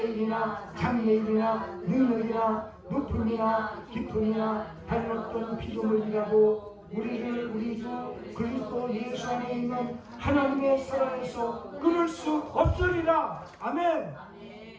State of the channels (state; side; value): identical; both; correlation 1.00